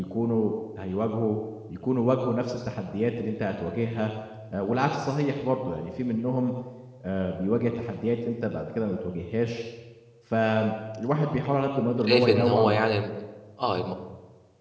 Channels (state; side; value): identical; both; correlation 1.00